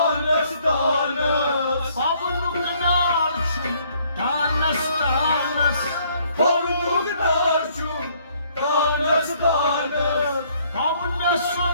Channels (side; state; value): both; inverted; correlation -0.64